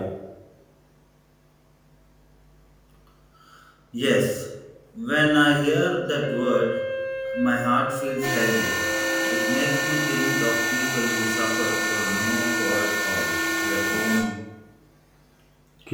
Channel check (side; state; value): both; identical; correlation 1.00